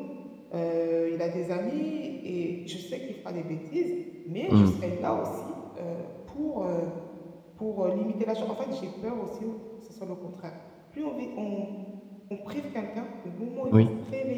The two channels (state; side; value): identical; both; correlation 1.00